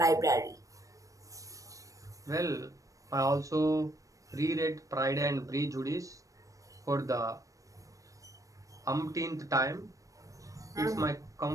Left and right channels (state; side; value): late; left; 0.16 ms